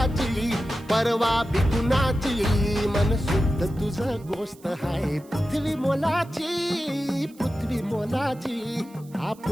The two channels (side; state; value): right; noise; hiss, 26 dB below the sound